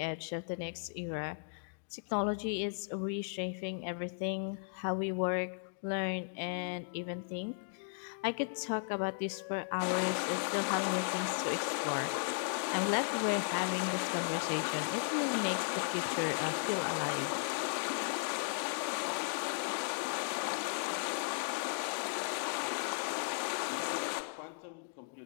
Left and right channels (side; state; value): right; silent; digital silence